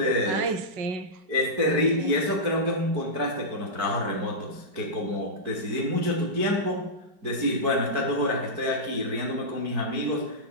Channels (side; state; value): left; late; 4.6 ms